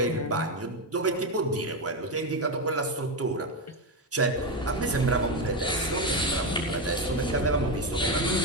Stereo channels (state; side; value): normal; both; correlation 0.11